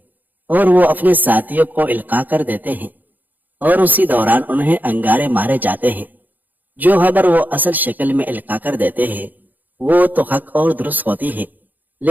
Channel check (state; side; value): late; left; 0.084 ms